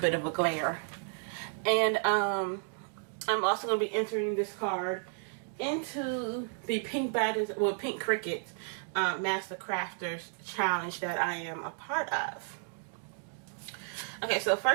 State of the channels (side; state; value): left; silent; 56 dB below the other